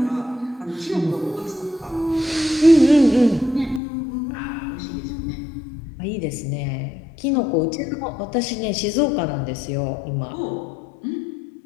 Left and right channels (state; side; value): drops out; right; at 3.8 s